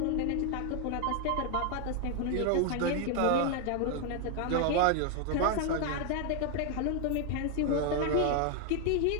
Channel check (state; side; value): different; both; correlation 0.00